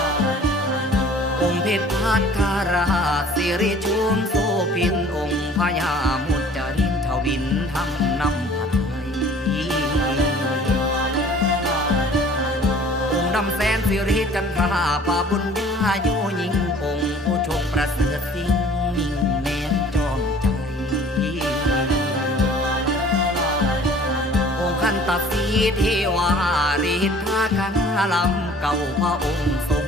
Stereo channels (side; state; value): both; normal; correlation 0.50